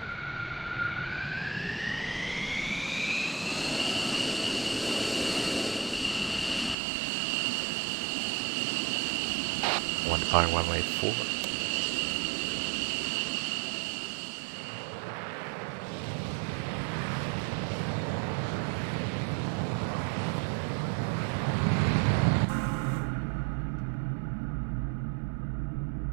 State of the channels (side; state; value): left; drops out; at 6.8 s